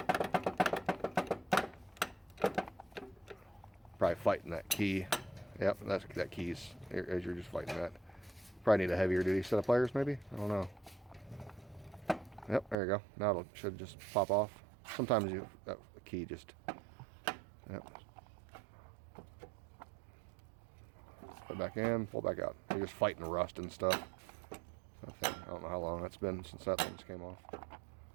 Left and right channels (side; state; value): left; drops out; at 12.8 s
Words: Probably fighting that key. Yep, that keys as you're just fighting that. Probably need a heavier duty set of pliers, maybe. I don't know. Yep, there you go. Now it should just pop off. Sometimes that key just. Yep. Put it back in, pull it back out. You're just fighting rust and stuff. I don't know how long that's been since that thing came off.